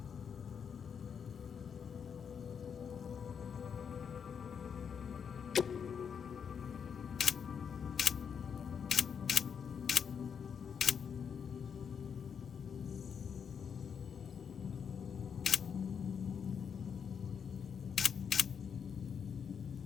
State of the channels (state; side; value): quieter; right; 7.0 dB